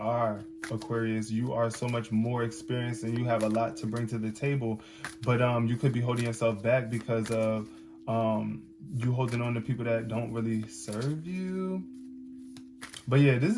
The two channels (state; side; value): identical; both; correlation 1.00